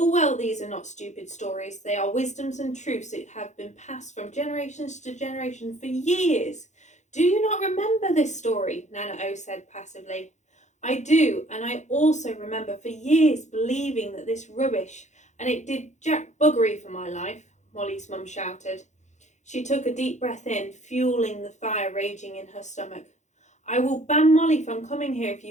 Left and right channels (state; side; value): late; right; 0.34 ms